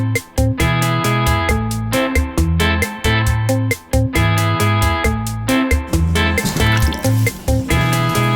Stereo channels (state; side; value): identical; both; correlation 1.00